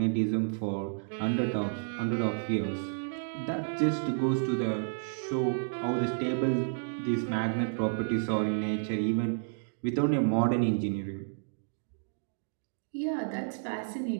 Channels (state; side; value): silent; left; digital silence